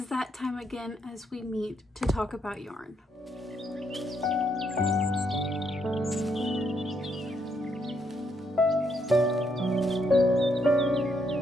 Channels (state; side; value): normal; both; correlation 0.75